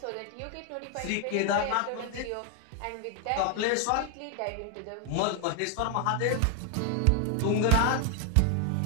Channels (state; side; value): different; both; correlation 0.01